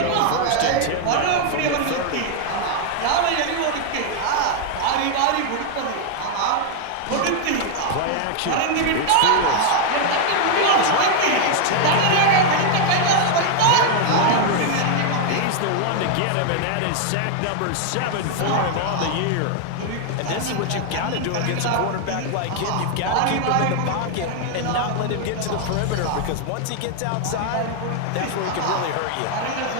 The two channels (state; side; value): different; both; correlation 0.00